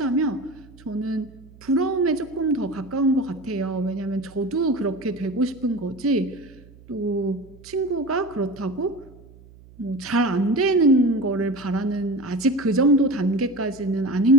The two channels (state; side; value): noise; right; hum, 23 dB below the sound